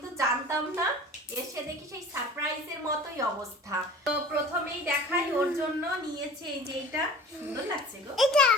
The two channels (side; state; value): both; normal; correlation 0.41